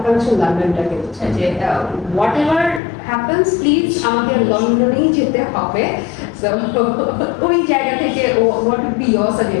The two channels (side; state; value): right; drops out; at 2.8 s